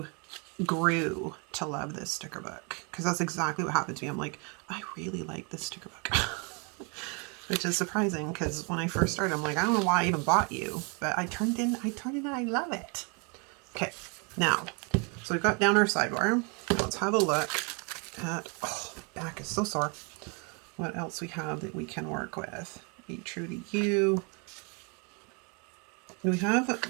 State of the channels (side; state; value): left; quieter; 33.6 dB